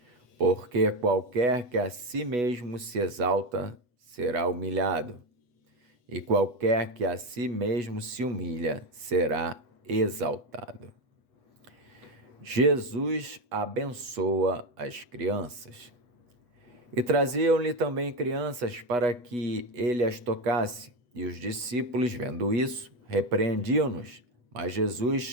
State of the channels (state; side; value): late; left; 8.2 ms